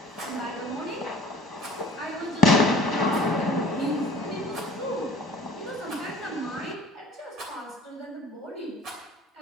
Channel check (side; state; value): both; normal; correlation 0.48